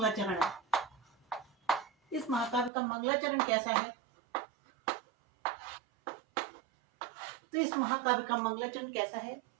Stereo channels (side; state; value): left; drops out; at 2.7 s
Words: है, इस महाकाव्य का मंगलाचरण कैसा है? तो इस महाकाव्य का मंगलाचरण कैसा है?